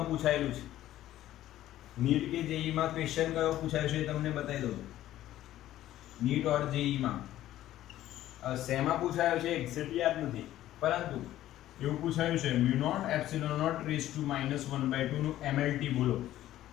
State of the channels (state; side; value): quieter; right; 13.7 dB